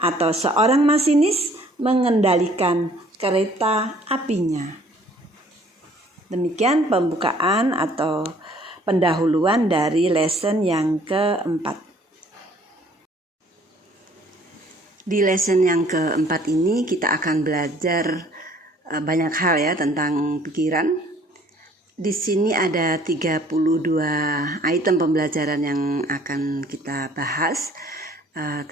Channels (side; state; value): both; normal; correlation 0.57